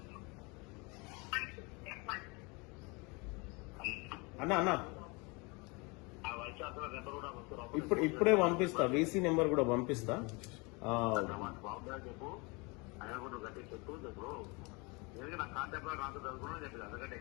అన్న ఇప్పుడే పంపిస్తా, వీసీ నెంబర్ కూడా పంపిస్తా. చెప్పు ఆయన కూడా గట్టి చెప్పు చెప్పు నా కాంటాక్ట్ నాకు చదువుకున్నా చెప్పి అందుకంటే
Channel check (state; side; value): quieter; right; 28.3 dB